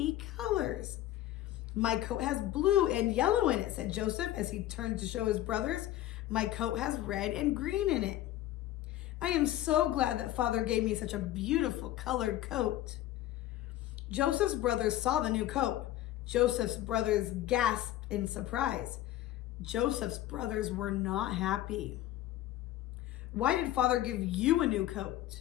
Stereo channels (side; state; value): right; quieter; 14.1 dB